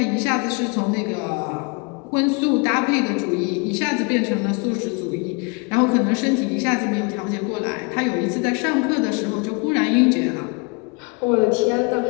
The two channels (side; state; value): right; quieter; 32.0 dB